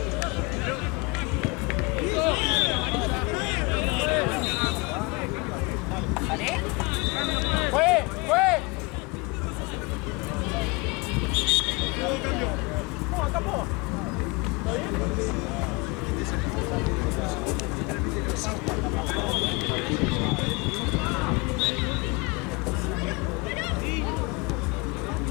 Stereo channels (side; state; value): right; quieter; 26.8 dB